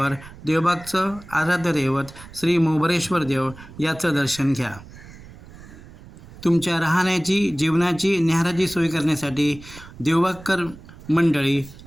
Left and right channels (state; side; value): noise; right; rumble, 18 dB below the sound